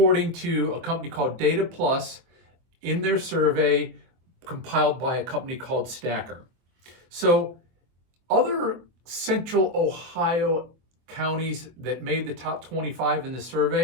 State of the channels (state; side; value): late; left; 24 ms